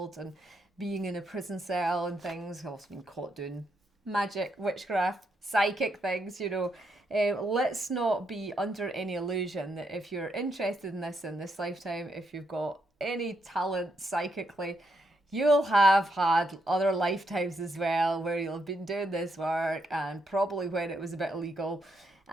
and being in a prison cell and things. I've also been caught doing magic, witchcraft, psychic things, you know. Let's not be under any illusion that if you're interested in this lifetime, if you've got any talent psychically, you'll have had other lifetimes as well where you'll have been doing this work, and probably when it was a bit illegal.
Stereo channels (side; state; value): both; normal; correlation 0.78